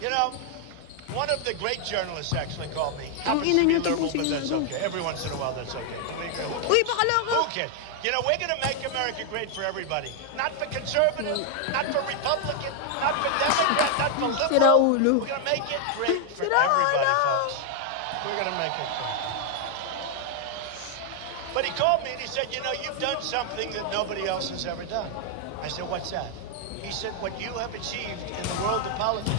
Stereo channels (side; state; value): both; different; correlation 0.00